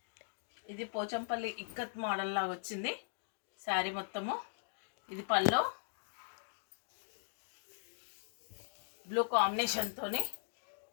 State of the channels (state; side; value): silent; right; digital silence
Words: ఇది పోచంపల్లి ఇక్కత్ మోడల్ లాగా వచ్చింది శారీ మొత్తము. ఇది పళ్ళు, బ్లూ కాంబినేషన్తోని